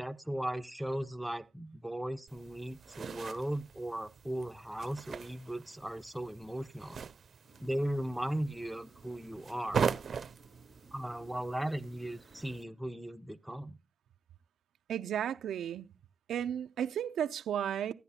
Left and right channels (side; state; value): left; quieter; 3.4 dB